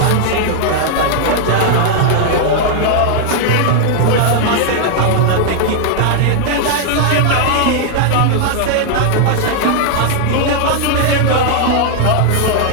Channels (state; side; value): different; both; correlation 0.00